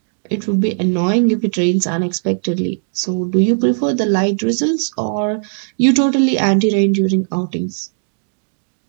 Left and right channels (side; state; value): left; silent; digital silence